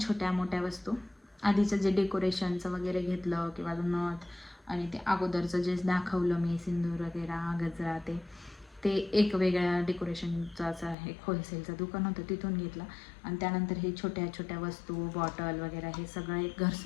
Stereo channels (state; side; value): drops out; right; at 11.0 s